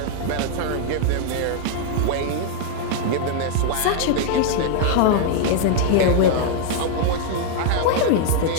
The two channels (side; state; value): both; different; correlation 0.00